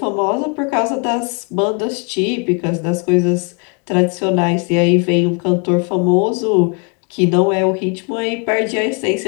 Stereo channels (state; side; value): quieter; right; 35.1 dB